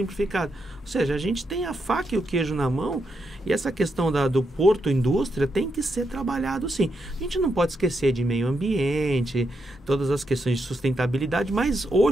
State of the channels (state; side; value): normal; both; correlation 0.82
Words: Ou seja, a gente tem a faca e o queijo na mão, e essa questão do porto indústria tem que ser trabalhado sim. A gente não pode esquecer de meio ambiente, todas as questões de sustentabilidade, mas